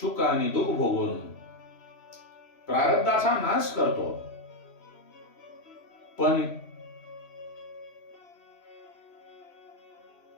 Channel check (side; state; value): right; late; 3.0 ms